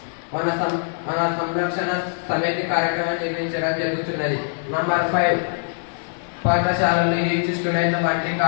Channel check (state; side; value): silent; right; digital silence